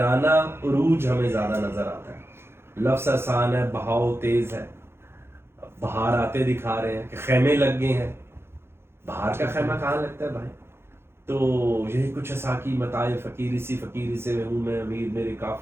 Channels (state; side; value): late; left; 0.12 ms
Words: عروج ہمیں زیادہ نظر آتا ہے، لفظ آسان ہے، بہاؤ تیز ہے، بہار آتے دکھا رہے ہیں کہ خیمے لگ گئے ہیں، بہار کا خیمہ کہاں لگتا ہے بھائی، تو یہی کچھ ساکی متائے فقیری سے ہوں میں امیر، میرے